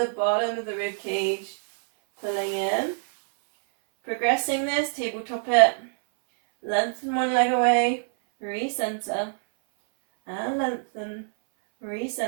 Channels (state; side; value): silent; left; 62 dB below the other